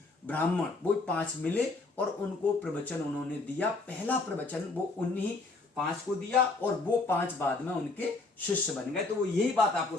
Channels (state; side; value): quieter; right; 3.5 dB